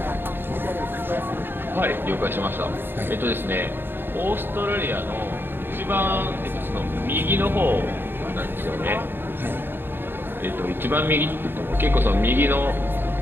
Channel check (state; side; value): late; left; 0.10 ms